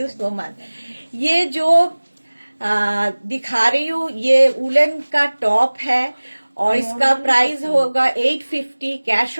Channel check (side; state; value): both; inverted; correlation -1.00